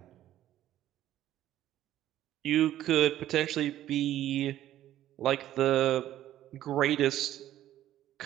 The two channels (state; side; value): quieter; left; 12.8 dB